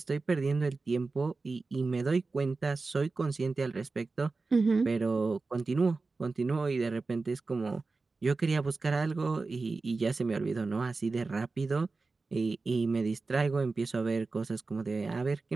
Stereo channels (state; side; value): quieter; left; 3.8 dB